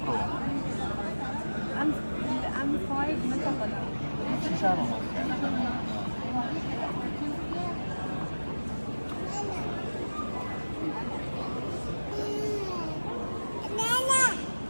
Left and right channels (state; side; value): inverted; both; correlation -1.00